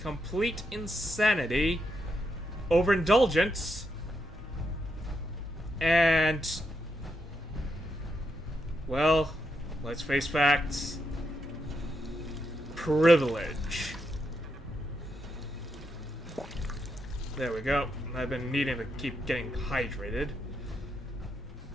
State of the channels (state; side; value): normal; both; correlation 0.82